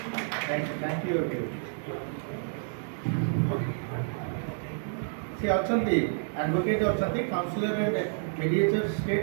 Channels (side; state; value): left; silent; digital silence